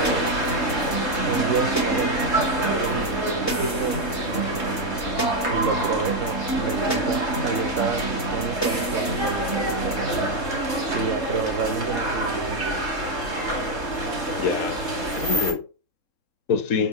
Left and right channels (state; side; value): late; right; 3.7 ms